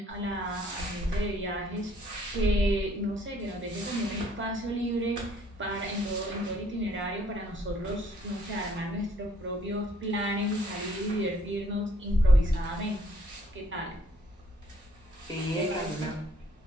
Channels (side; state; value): both; normal; correlation 0.63